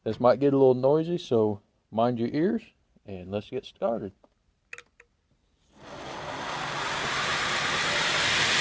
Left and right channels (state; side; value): identical; both; correlation 1.00